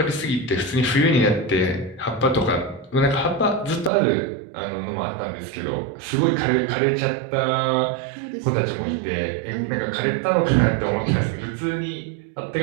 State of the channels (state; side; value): drops out; left; at 3.9 s